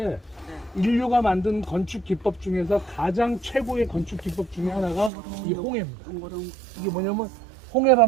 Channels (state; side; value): drops out; left; at 5.1 s